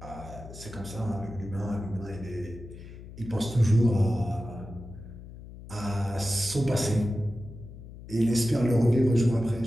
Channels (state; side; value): noise; left; hum, 15 dB below the sound